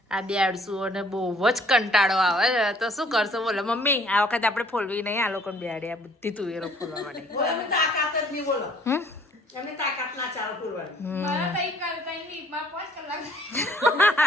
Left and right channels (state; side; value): normal; both; correlation 0.59